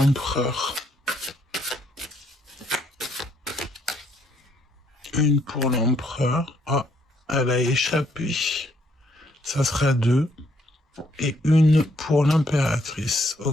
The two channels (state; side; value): normal; both; correlation 0.70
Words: Une pour l'empereur. Ah, elle a échappé. Ça sera 2. Et une pour l'impératrice.